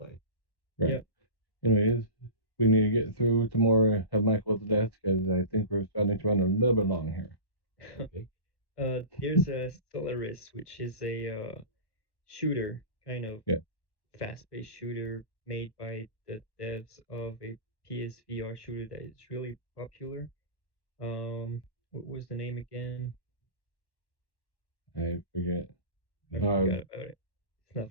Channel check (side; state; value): right; late; 1.1 ms